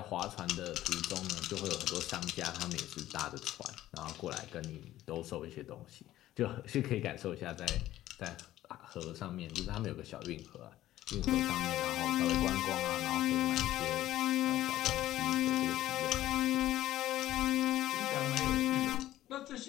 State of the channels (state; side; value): quieter; right; 14.2 dB